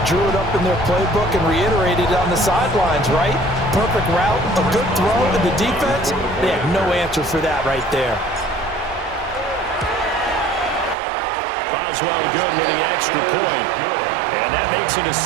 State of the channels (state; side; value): drops out; left; at 11.0 s